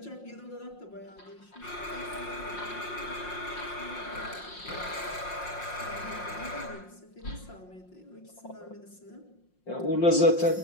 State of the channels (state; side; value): late; right; 5.6 ms